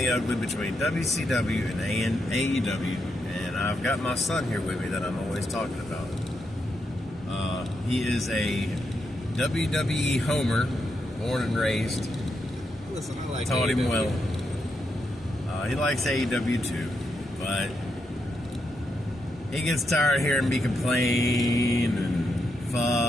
ugly between WCW and AEW. And I've got my son here with me that I'm always talking about. He is a WWE homer, born and raised. Listen, I like Taught AEW. him well. He likes AEW too, but he gets tired of hearing me complain and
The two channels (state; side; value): normal; both; correlation 0.82